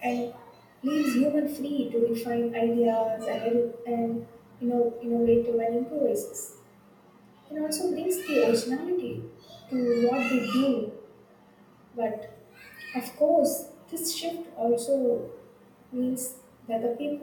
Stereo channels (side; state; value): both; identical; correlation 1.00